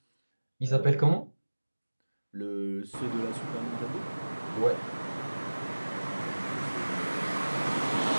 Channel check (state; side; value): inverted; both; correlation -1.00